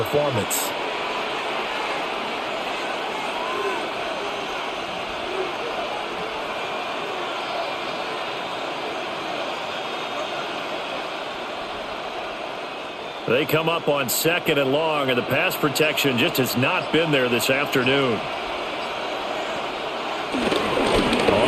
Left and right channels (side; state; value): both; identical; correlation 1.00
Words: They come up on 2nd and long, and the pass protection just has not been there this afternoon.